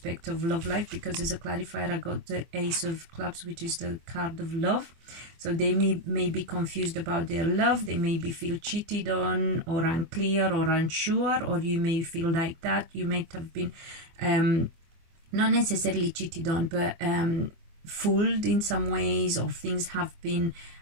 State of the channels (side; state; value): left; late; 24 ms